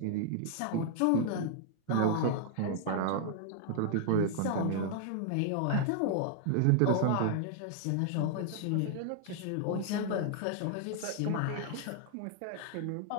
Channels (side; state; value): both; different; correlation -0.01